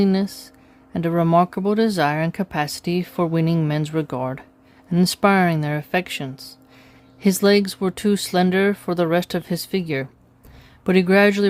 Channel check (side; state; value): both; identical; correlation 1.00